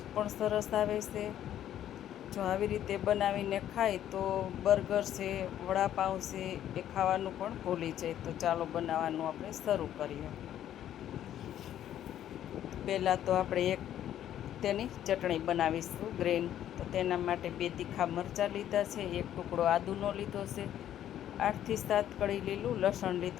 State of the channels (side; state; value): right; quieter; 11.3 dB